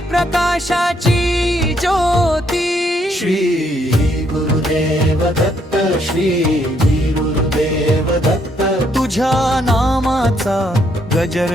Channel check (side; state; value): both; normal; correlation 0.71